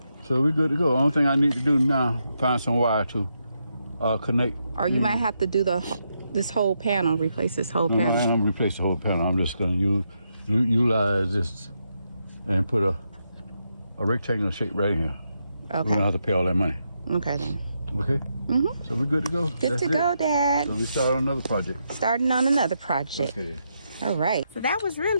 So we're good to go. Only thing I need to do now, find some wire to connect. Or you might have to do this whole panel, replace this whole panel. I'm gonna replace the whole panel. I'm just gonna utilize this and put a rectangular shape right here. Okay. We don't have to pay all that money. Okay then. Okay? So we're good to go. Good to go, Dad. So we start on another project. Starting on another project. Okay. All right. So that was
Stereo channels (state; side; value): inverted; both; correlation -0.82